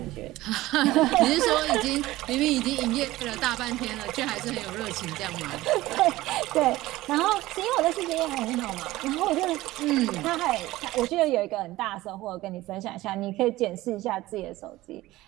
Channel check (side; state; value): left; quieter; 17.5 dB